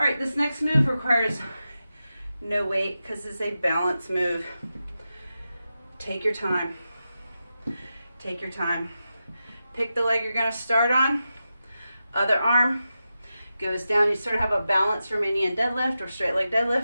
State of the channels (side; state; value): both; inverted; correlation -0.91